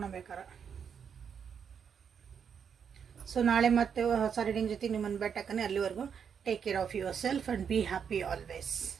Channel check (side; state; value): left; quieter; 7.2 dB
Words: ಸೊ ನಾಳೆ ಮತ್ತೆ ಹೊಸ ರೀಡಿಂಗ್ ಜೊತೆಗೆ ನಿಮ್ಮನ್ನು ಭೇಟಿಯಾಗ್ತೀನಿ. ಅಲ್ಲಿವರೆಗೂ take care of yourself and be happy always.